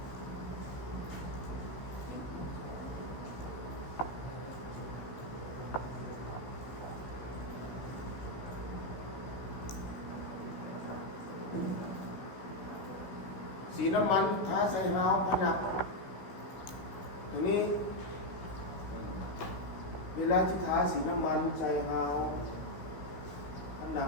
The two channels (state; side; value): late; right; 16 ms